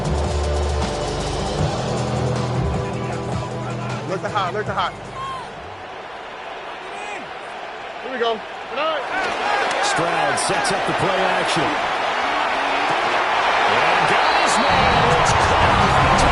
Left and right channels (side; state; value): both; identical; correlation 1.00